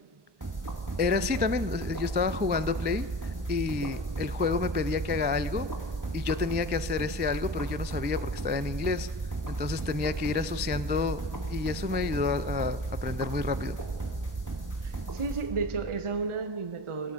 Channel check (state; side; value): late; left; 1.1 ms